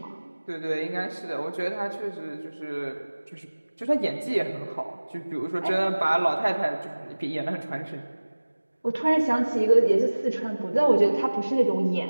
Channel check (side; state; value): both; inverted; correlation -1.00